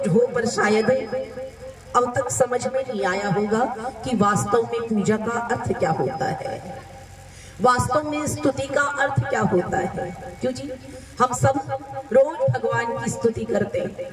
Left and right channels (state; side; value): identical; both; correlation 1.00